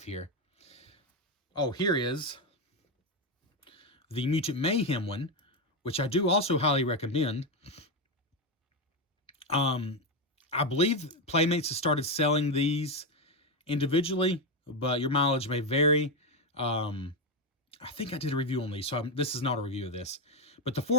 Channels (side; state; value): both; normal; correlation 0.08